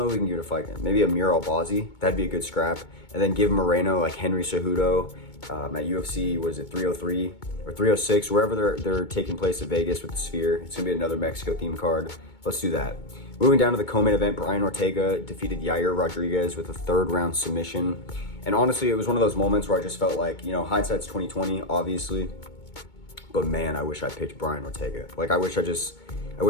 if we can give it a fight. Maybe Amir Albazi. That'd be a good scrap. And then give Moreno like Henry Cejudo at UFC, what is it, 303 or 306, wherever they're taking place at Vegas with the Sphere. It's going to be another Mexico themed card. Let's do that. Moving down to the co-main event, Brian Ortega defeated Yair Rodriguez with a third round submission. And honestly, it was one of those moments where I just felt like, you know, hindsight's 2020, obviously. But man, I wish I picked Brian Ortega. Like, I wish I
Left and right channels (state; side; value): late; right; 2.2 ms